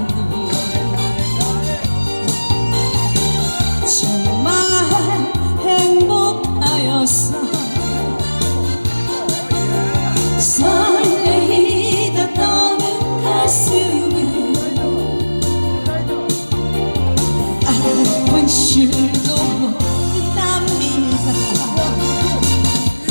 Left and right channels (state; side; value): inverted; both; correlation -1.00